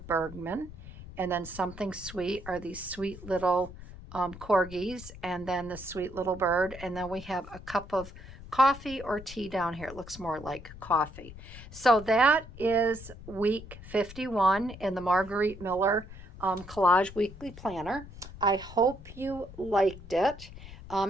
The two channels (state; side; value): noise; left; rumble, 15 dB below the sound